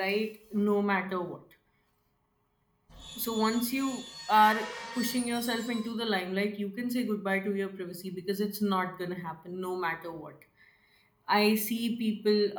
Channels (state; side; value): identical; both; correlation 1.00